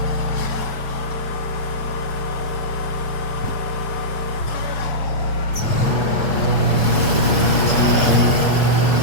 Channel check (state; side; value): late; right; 7.1 ms